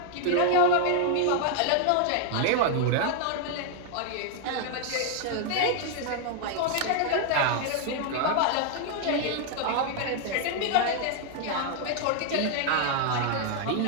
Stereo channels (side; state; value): both; different; correlation 0.00